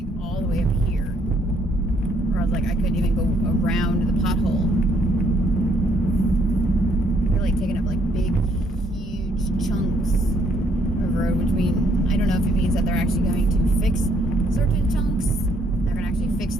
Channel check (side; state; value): both; normal; correlation 0.68